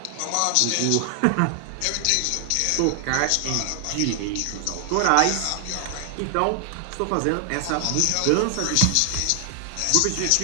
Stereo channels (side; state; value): both; different; correlation 0.00